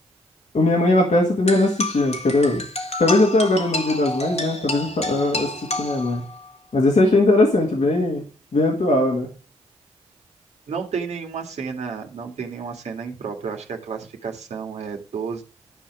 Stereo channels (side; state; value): both; normal; correlation 0.66